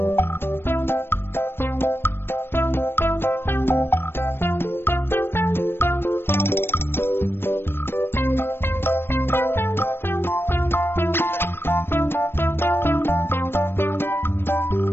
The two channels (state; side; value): late; right; 0.11 ms